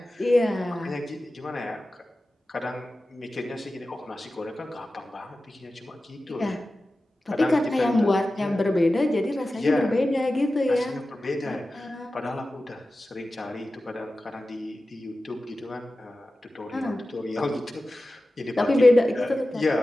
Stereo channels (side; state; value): both; normal; correlation 0.94